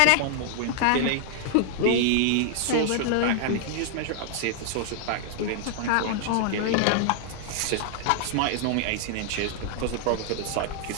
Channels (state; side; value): different; both; correlation 0.00